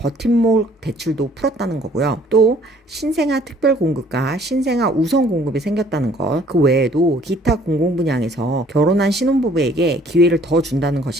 대출도 풀었다는 거고요. 또 신생아 특별공급과 신생아 우선공급이 생겼다는 것, 그 외에도 기타 공공분양에서 결혼한 신혼부부에게 기회를 더 준다는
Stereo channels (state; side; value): normal; both; correlation 0.58